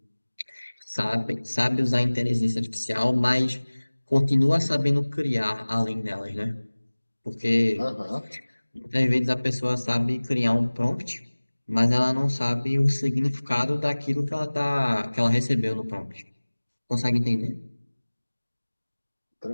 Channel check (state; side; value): inverted; both; correlation -1.00